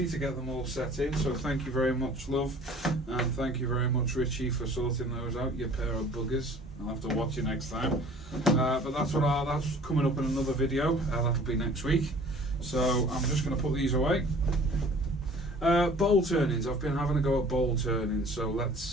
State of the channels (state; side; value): normal; both; correlation 0.49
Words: to get them all set in. So thank you very much, love, and thank you very much, Richie, for sorting those out, you pair of buggers. I'll have to watch you next time. But that's coming up in another video. That'll be next week. So I'm just going to put these away. Bowl turnings. I've been having a go at bowl turnings, so